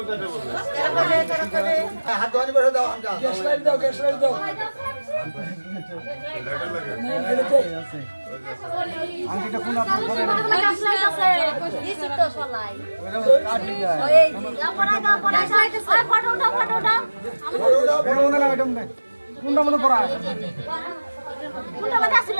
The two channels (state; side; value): inverted; both; correlation -1.00